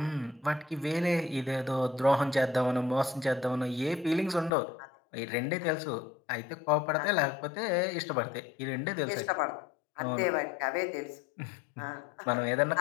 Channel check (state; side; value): drops out; right; at 4.5 s